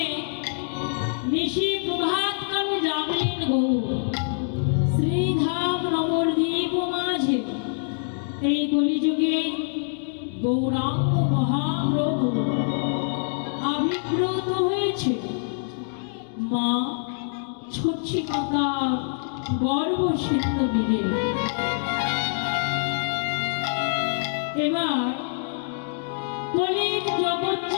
নিশি প্রভাত কালে যাবেন গৌর শ্রীধাম নবদ্বীপ মাঝে এই কলিযুগে গৌরাঙ্গ মহাপ্রভু আবির্ভূত হয়েছে মা ছচ্ছি মাতার গর্ভসিদ্ধ মিলে। এবার কলির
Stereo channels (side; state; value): right; silent; digital silence